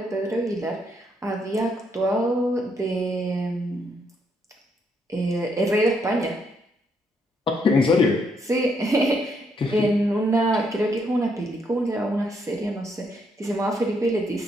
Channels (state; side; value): normal; both; correlation 0.75